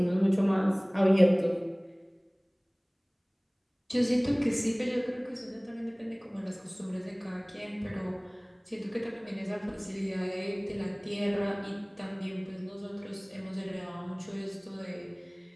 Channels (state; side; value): identical; both; correlation 1.00